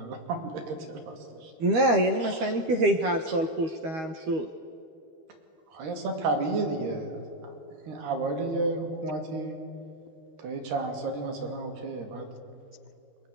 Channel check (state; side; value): late; left; 13 ms